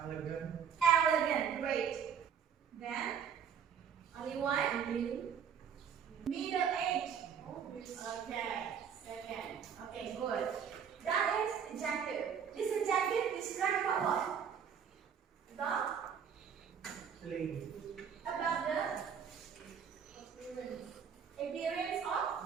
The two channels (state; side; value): quieter; left; 7.5 dB